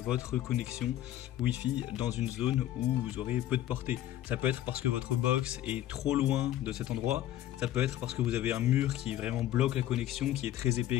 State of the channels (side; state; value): right; quieter; 13.0 dB